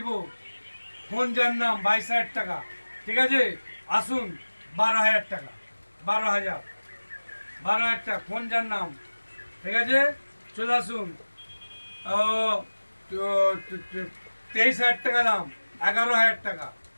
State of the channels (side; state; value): both; inverted; correlation -1.00